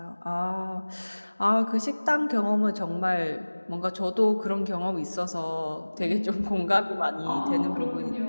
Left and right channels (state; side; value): inverted; both; correlation -1.00